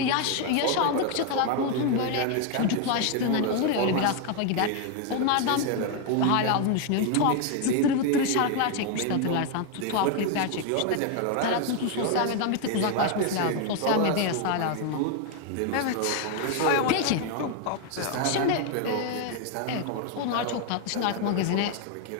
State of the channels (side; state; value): both; different; correlation 0.01